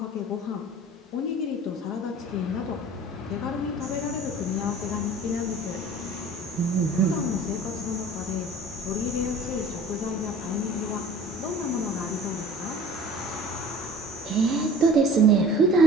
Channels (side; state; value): both; normal; correlation 0.45